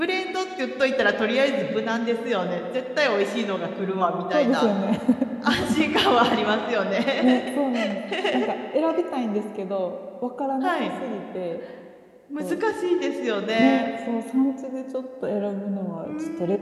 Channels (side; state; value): both; identical; correlation 1.00